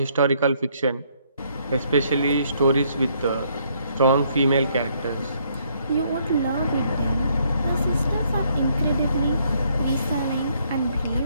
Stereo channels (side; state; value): both; inverted; correlation -0.69